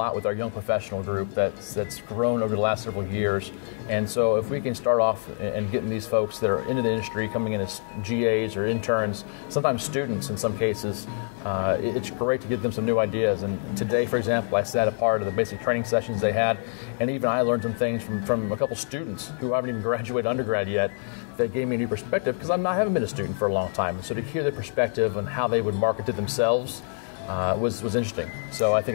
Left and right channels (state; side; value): silent; right; 61 dB below the other